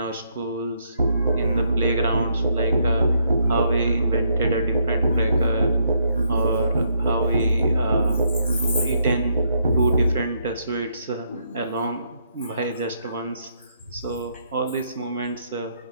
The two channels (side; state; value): both; inverted; correlation -0.73